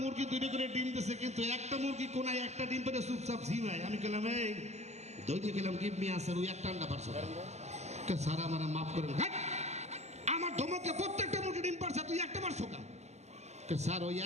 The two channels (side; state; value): left; late; 0.32 ms